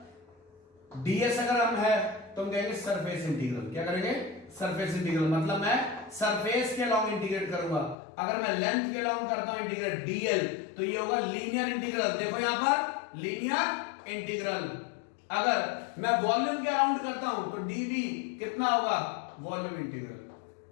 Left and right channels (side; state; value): right; drops out; at 8.0 s